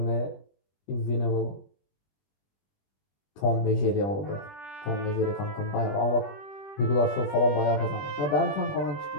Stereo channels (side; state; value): right; late; 20 ms